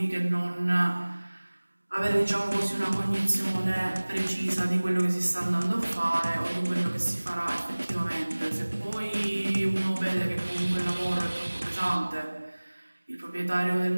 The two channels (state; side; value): inverted; both; correlation -1.00